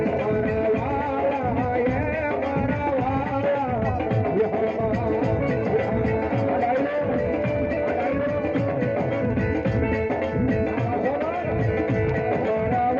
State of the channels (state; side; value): identical; both; correlation 1.00